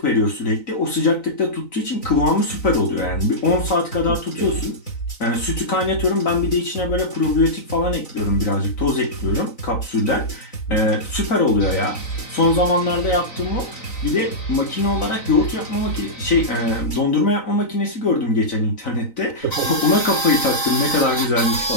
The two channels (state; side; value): late; right; 3.9 ms